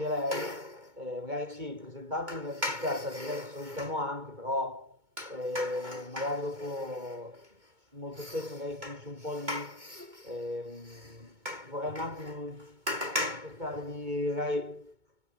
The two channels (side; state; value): left; late; 2.2 ms